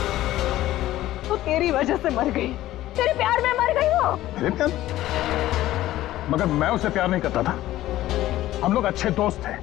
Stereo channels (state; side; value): quieter; right; 14.9 dB